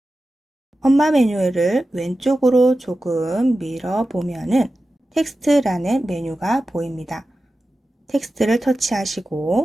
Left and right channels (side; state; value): both; normal; correlation 0.93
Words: 엄마 메뉴를 왼쪽으로 조금 밀어보면은 텍스트라는 메뉴가 보입니다. 텍스트를